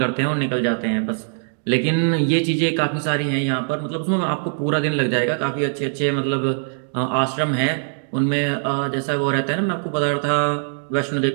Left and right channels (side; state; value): left; silent; digital silence